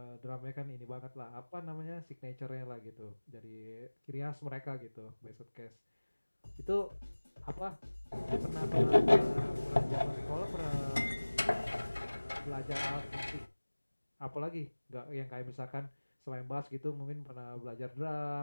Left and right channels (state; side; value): inverted; both; correlation -1.00